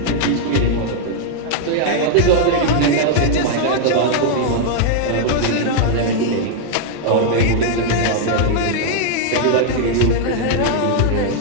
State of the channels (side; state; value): both; different; correlation -0.01